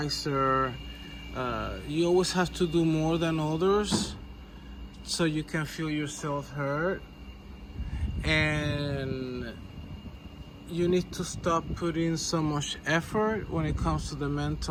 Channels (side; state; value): both; identical; correlation 1.00